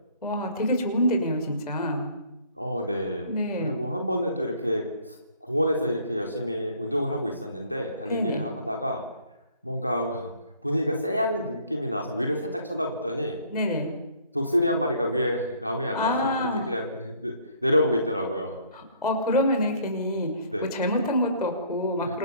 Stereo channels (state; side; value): inverted; both; correlation -0.59